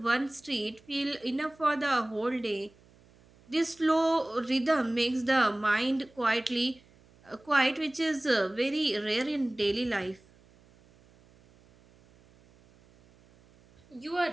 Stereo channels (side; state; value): right; noise; hum, 29 dB below the sound